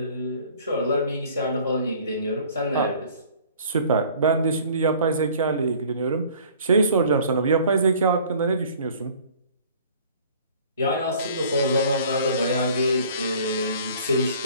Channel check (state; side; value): inverted; both; correlation -0.51